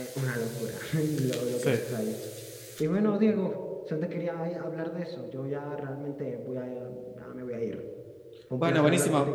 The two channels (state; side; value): identical; both; correlation 1.00